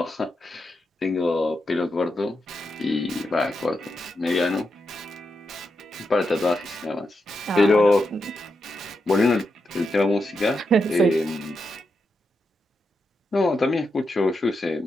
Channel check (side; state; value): both; normal; correlation 0.85